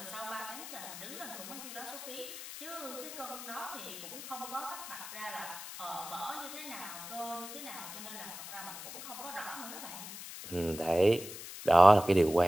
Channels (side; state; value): left; noise; hiss, 11 dB below the sound